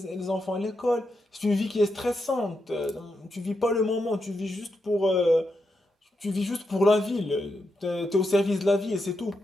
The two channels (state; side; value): normal; both; correlation 0.85